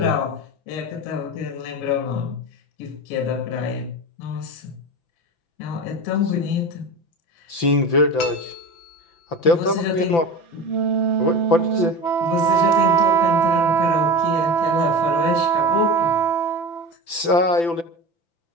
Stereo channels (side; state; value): right; late; 5.9 ms